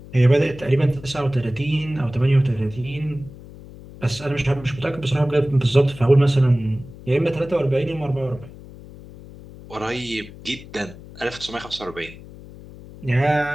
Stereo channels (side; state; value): left; noise; hum, 17 dB below the sound